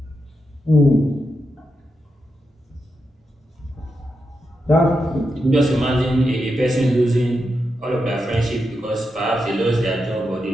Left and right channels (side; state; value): both; normal; correlation 0.86